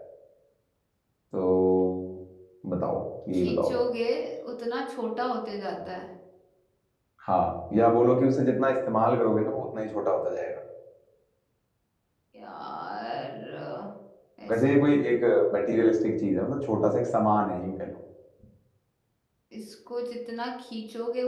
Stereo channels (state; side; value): identical; both; correlation 1.00